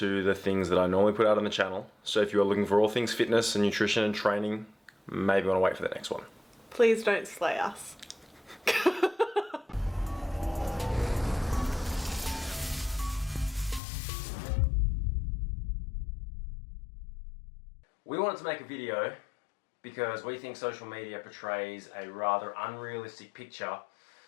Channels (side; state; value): right; drops out; at 13.8 s